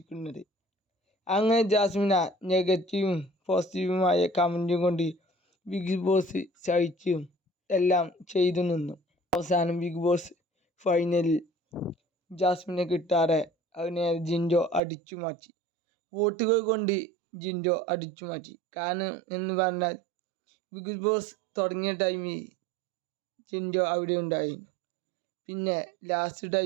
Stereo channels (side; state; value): left; drops out; at 14.8 s